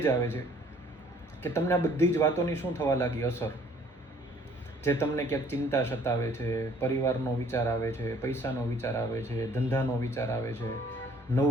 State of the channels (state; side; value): normal; both; correlation 0.58